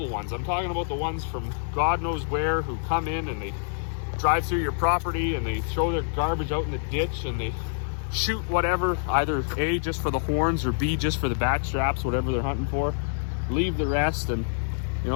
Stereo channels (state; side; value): silent; right; digital silence